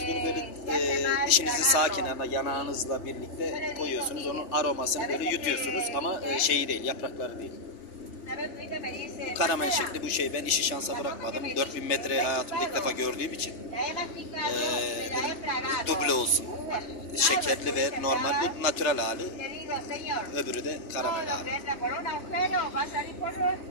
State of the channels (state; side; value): late; right; 3.3 ms